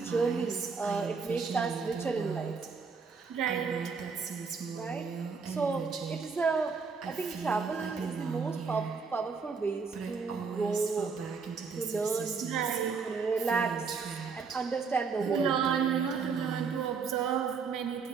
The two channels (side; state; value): left; quieter; 5.2 dB